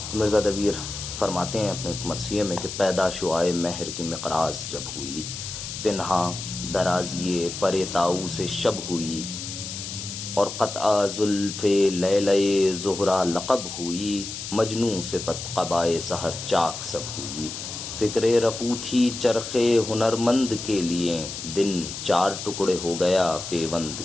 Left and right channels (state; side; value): noise; left; hiss, 8 dB below the sound